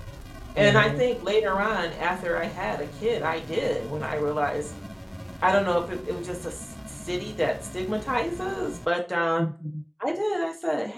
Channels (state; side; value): identical; both; correlation 1.00